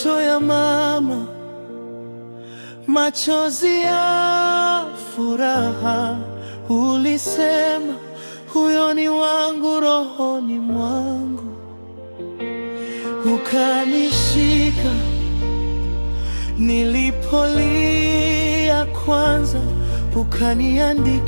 ya mama, machozi ya furaha. Ulisema huyo ni wangu rohoni mwangu, ukanishika nilipolia kwanza,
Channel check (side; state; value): both; inverted; correlation -1.00